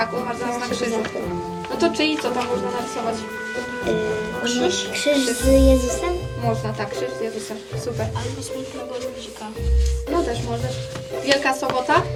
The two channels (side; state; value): both; identical; correlation 1.00